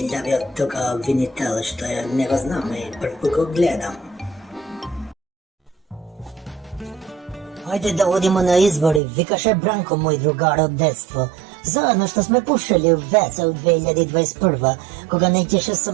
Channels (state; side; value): drops out; left; at 9.0 s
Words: od toga vinitela, što ja ne го znam i prvi го gledam. Hajde da odimo na izbori, vikаше Branko, moj drugar od detstva. Zajedno što sme pušili u veca u 2021. Koga nećeše sa